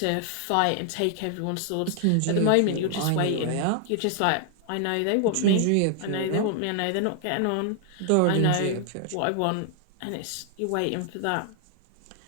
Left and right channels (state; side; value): different; both; correlation 0.00